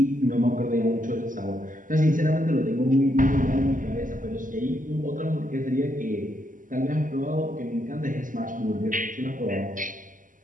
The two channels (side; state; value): left; late; 0.38 ms